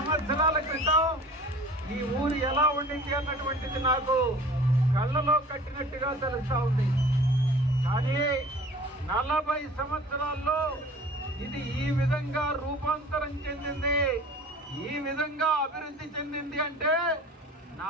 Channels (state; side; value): normal; both; correlation 0.45